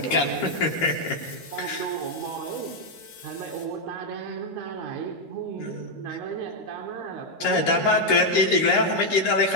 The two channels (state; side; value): late; right; 13 ms